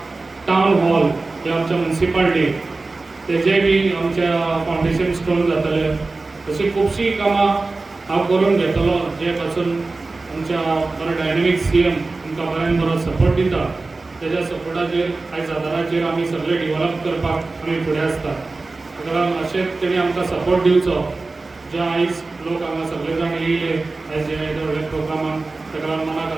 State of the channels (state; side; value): quieter; left; 3.5 dB